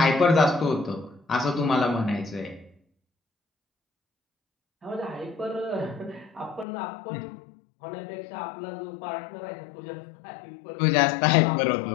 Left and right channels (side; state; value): right; drops out; at 6.7 s